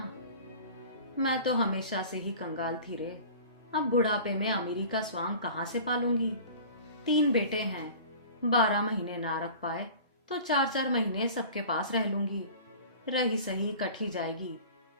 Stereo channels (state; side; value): inverted; both; correlation -0.41